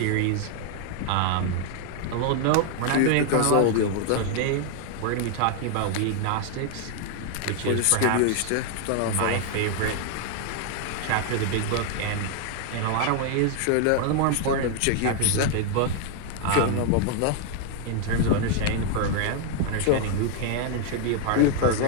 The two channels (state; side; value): different; both; correlation 0.00